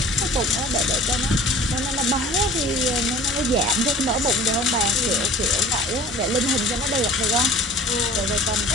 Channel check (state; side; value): normal; both; correlation 0.45